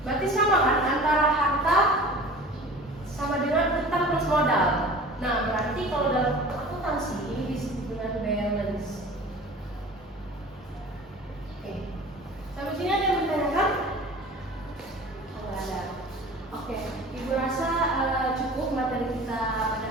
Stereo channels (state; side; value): normal; both; correlation 0.41